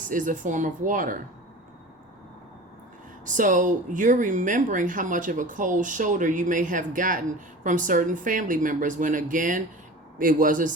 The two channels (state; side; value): normal; both; correlation 0.36